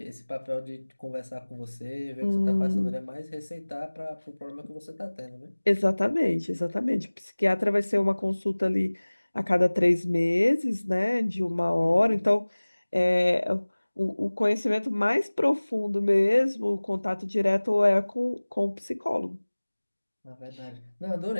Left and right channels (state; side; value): inverted; both; correlation -1.00